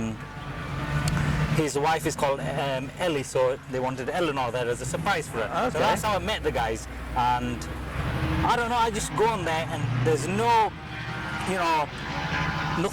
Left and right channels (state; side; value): identical; both; correlation 1.00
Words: his wife is called Ellie, so they wanted Eleanor there as a surprise for her. Okay. So that's how I met the guys, and I don't know, I just go on there and there's no, you know,